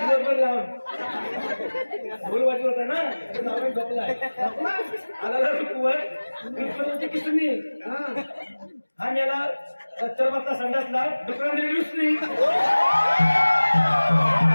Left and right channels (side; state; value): both; inverted; correlation -1.00